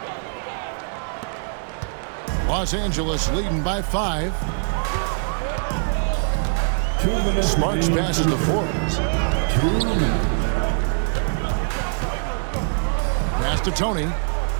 Los Angeles leading by 5. Smarts passes the forwards. Pass to Tony.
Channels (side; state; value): left; silent; digital silence